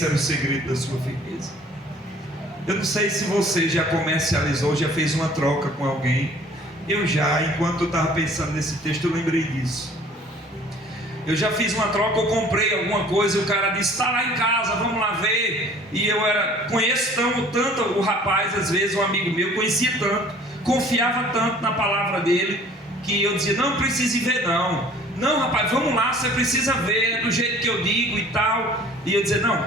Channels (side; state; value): both; normal; correlation 0.51